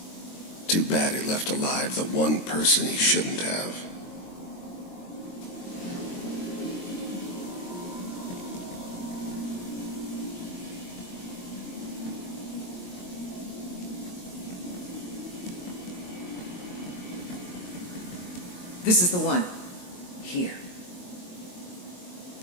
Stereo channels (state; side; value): late; right; 22 ms